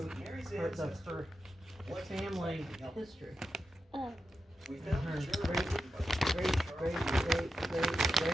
that Mary's her ancestor wasn't family exactly healthy. history. Oh. We found Her a journal written by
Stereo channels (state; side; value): normal; both; correlation 0.90